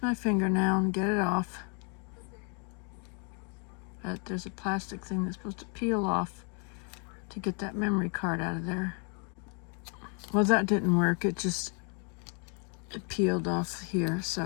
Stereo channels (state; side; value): quieter; right; 38.3 dB